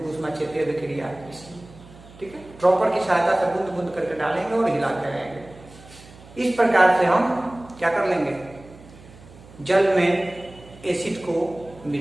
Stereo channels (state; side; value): noise; right; hum, 21 dB below the sound